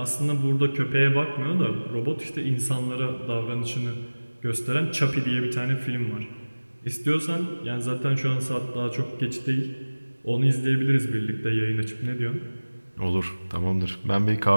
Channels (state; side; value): inverted; both; correlation -1.00